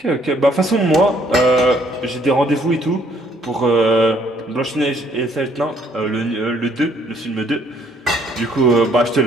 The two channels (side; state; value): both; normal; correlation 0.64